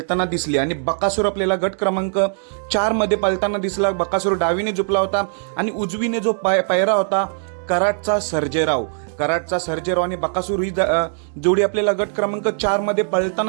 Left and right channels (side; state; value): left; silent; 65 dB below the other